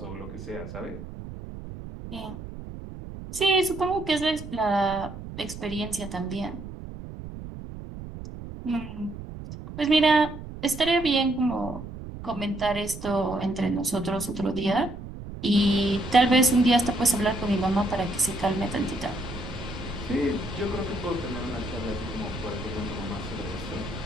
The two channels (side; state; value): right; noise; rumble, 11 dB below the sound